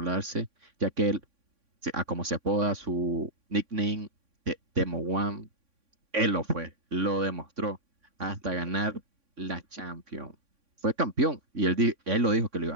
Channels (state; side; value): late; left; 3.6 ms